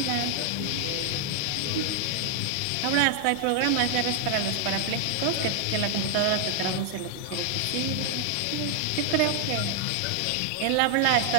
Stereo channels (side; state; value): both; different; correlation 0.00